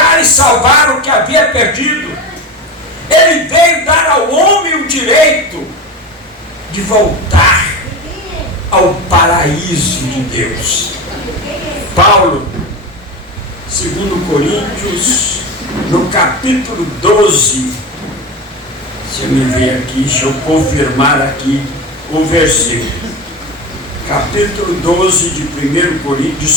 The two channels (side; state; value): both; normal; correlation 0.24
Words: e salvar o que havia perdido. Ele veio dar ao homem o direito de voltar ao paraíso de Deus. Paulo, 2 Coríntios, no capítulo 12, se eu me ver aqui, deixa eu confirmar aqui o versículo. Capítulo 12 de 1 Coríntios,